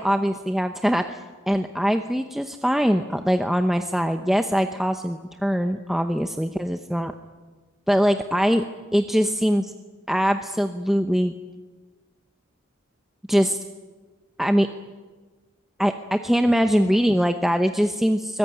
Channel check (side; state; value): both; normal; correlation 0.96